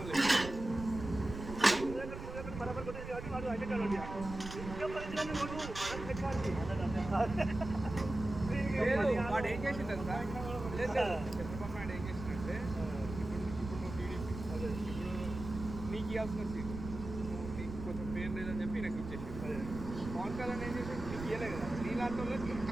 బరాబర్ కొట్టేది కాబట్టి వాడు అయితే కాదు వాడు ఏం చేసిండు అంతా చంద్రబాబు నాయుడు ఏం చేసిందంటే ఇప్పుడు నువ్వు టీడీపీ ఇప్పుడు నీకు ఇవ్వాల్సిన సీటు నీకు కొంచెం పేరు లేదని చెప్పి నాకు ఇచ్చేసి పవన్ కళ్యాణ్ ఏం చేసి నీకు ఇవ్వలే కదా నీ లాంటి వాళ్ళకి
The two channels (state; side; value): noise; right; rumble, 9 dB below the sound